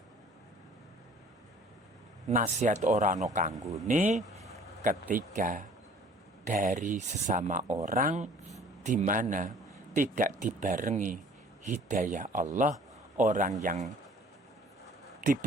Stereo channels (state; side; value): normal; both; correlation 0.52